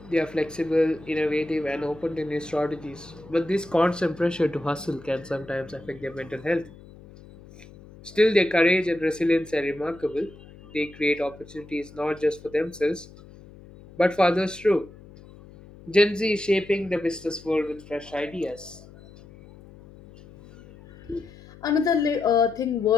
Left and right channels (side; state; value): left; noise; hum, 21 dB below the sound